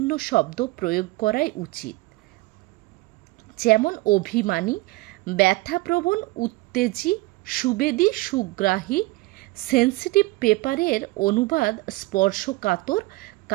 শব্দ প্রয়োগ করাই উচিত, যেমন অভিমানী, ব্যথাপ্রবণ, উত্তেজী, সুবেদী, সুগ্রাহী। সেন্সিটিভ পেপারের অনুবাদ স্পর্শকাতর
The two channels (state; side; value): quieter; left; 21.3 dB